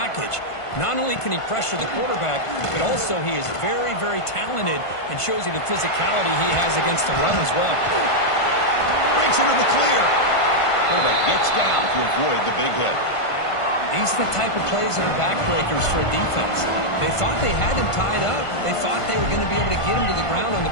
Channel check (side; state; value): right; late; 1.5 ms